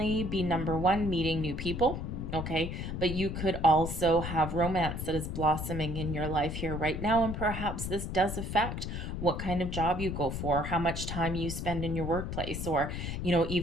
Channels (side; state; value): left; noise; rumble, 5 dB below the sound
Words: be, number one, meeting new people, okay, but you could also have romance that is blossoming in your life here right now, and perhaps this does affect what kind of job you go for, how much time you spend in your workplace, or